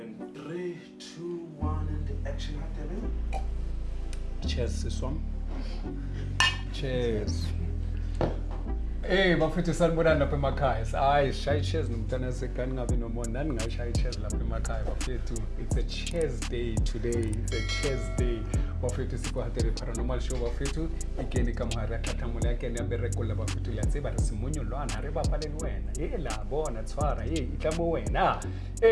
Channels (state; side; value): identical; both; correlation 1.00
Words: 3, 2, 1 and the action happening. Cheers siswam. Cheers. Hey bafethu sanibonani lapha emakhaya. Hayi shayi cheers nomntana sekani ngabe nomona nani ngayishayi cheers lapha emakhaya bafethu. It's a cheers day today. It's a cheers day. Bafethu sikwahatere paranormal show bafethu. Ikeni kamhara thathamula yake ni aberekola bafethu liyatseba re simunyo lwana re bapaleni wena. Hey la bona tshwara hey itlamo wena.